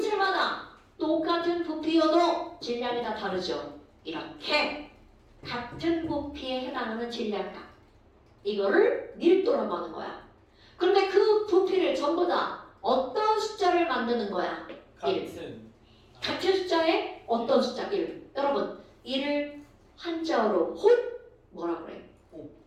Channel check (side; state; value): both; identical; correlation 1.00